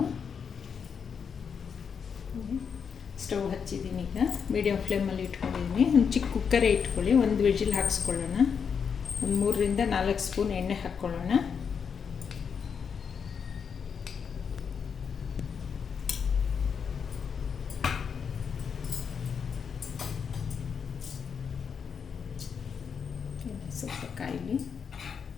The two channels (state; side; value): quieter; right; 6.6 dB